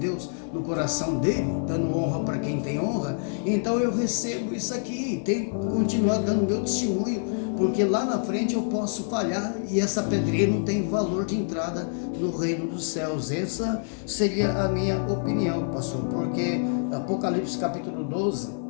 no coração dele, dando honra para quem tem honra. Então eu recebo isso aqui, tenho que continuar dando meu testemunho, porque lá na frente eu posso falhar e essa pedrinha não tem valor de entrada no reino dos céus. Essa seria a minha opinião, pastor, porque Apocalipse capítulo 12,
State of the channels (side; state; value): right; silent; 61 dB below the other